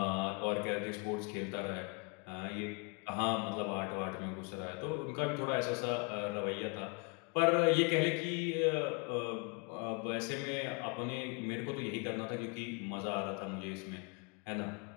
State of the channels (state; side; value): quieter; right; 32.1 dB